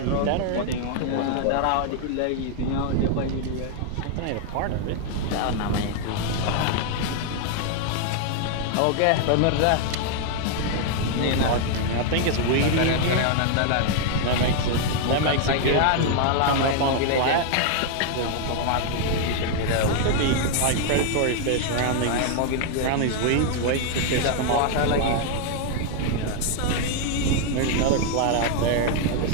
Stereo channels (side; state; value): both; different; correlation 0.00